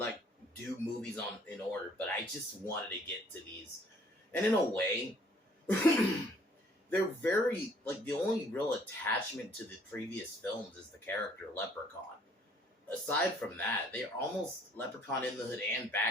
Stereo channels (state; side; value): normal; both; correlation 0.59